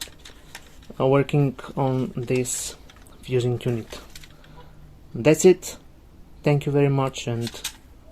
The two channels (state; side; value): identical; both; correlation 1.00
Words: working on this fusing unit. That's it. Thank you very much and